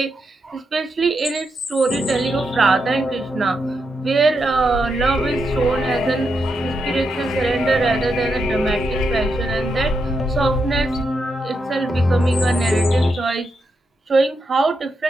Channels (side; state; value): both; normal; correlation 0.83